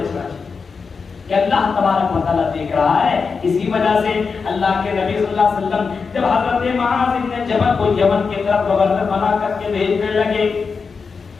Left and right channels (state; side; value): quieter; right; 5.1 dB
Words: چاہیے کہ اللہ تبارک و تعالیٰ دیکھ رہا ہے. اسی وجہ سے اللہ کے نبی صلی اللہ علیہ وسلم جب حضرت معاذ بن جبل کو یمن کی طرف گورنر بنا کر کے بھیجنے لگے